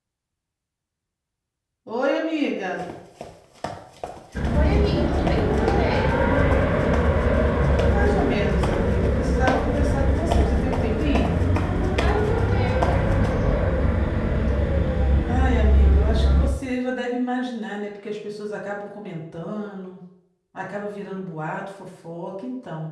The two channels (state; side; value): identical; both; correlation 1.00